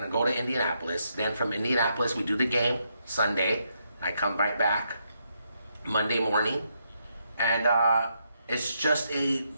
go to Indianapolis. Then from Indianapolis, we do the game Sunday. I come right back Monday morning, and it's just a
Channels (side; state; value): both; inverted; correlation -0.78